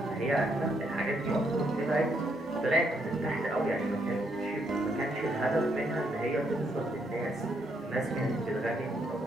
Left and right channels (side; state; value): both; normal; correlation 0.75